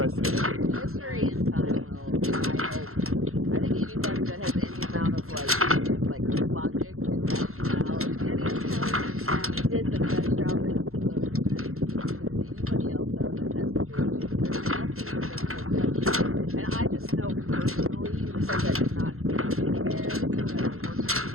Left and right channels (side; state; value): left; late; 0.62 ms